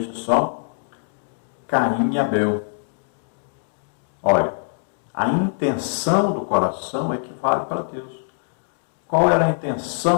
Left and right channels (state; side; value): silent; right; digital silence